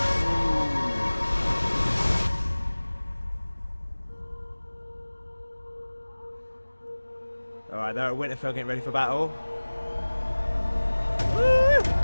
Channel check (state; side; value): inverted; both; correlation -1.00